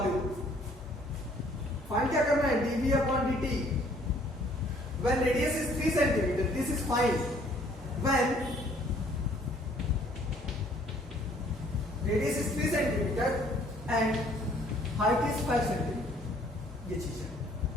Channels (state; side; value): normal; both; correlation 0.60